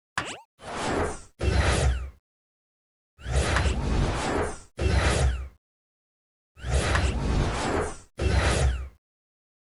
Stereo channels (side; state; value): both; identical; correlation 1.00